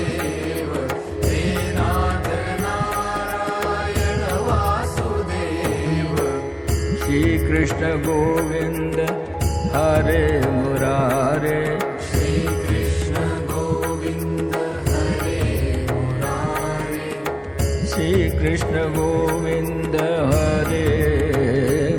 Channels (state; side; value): identical; both; correlation 1.00